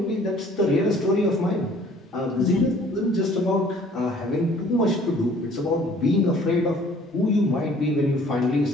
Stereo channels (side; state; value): both; normal; correlation 0.55